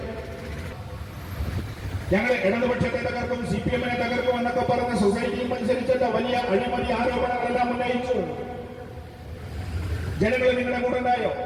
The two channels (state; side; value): identical; both; correlation 1.00